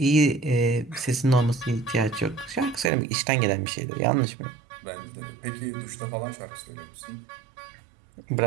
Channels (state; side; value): drops out; left; at 2.9 s